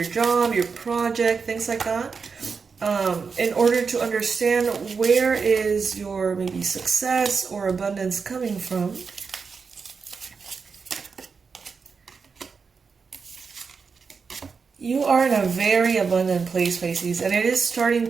job, your project, things like that, in order to understand where is your maybe success or abundance coming from. You are in a very abundant place, Pisces, and it is starting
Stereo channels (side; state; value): left; quieter; 5.3 dB